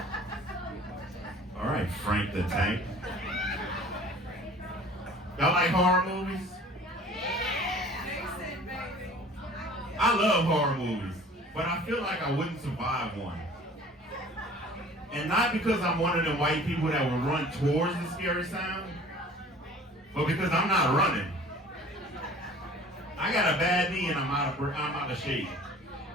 All right, Frank the Tank. Y'all like horror movies? I love horror movies, but I feel like I wouldn't survive one. And not because I'm one of them white people that will run towards the scary sound, but because I'm not running. I got a bad knee and I'm out of shape.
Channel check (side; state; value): both; normal; correlation 0.47